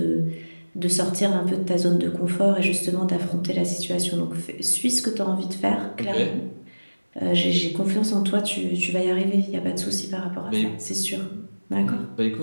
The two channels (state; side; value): inverted; both; correlation -1.00